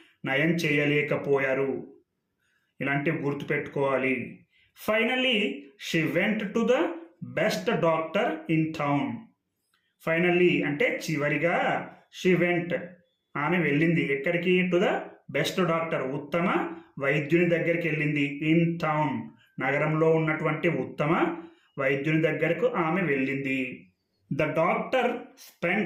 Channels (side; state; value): both; identical; correlation 1.00